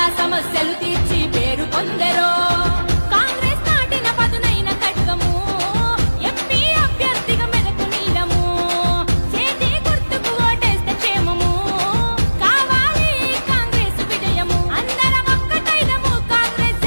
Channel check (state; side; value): inverted; both; correlation -1.00